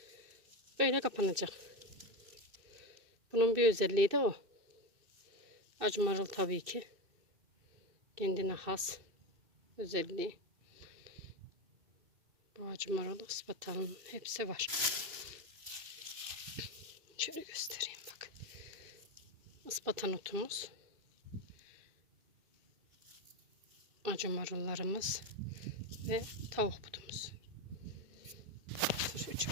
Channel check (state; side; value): late; left; 2.6 ms